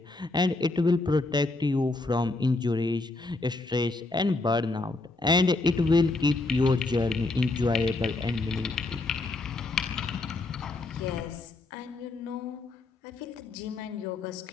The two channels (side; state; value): right; quieter; 3.2 dB